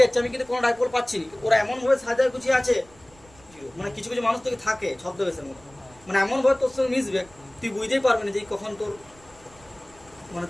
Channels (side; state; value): right; noise; rumble, 26 dB below the sound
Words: যাচ্ছি, আমি কিন্তু কোনো ডাইপোল পাচ্ছি না। ওরা এমন ভাবে সাজায় গুছিয়ে আছে 0, মানে কিছু কিছু মানুষ তোকে থাকে ছদ্মবেশের মতো, মানে এমন ভাবে তোর সঙ্গে মিশবে তুই বুঝতেই পারবি না যে কখন তোর মানে